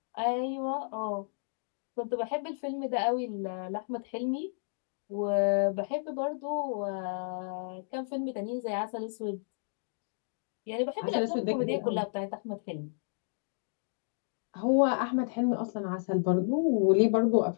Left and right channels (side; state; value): right; silent; digital silence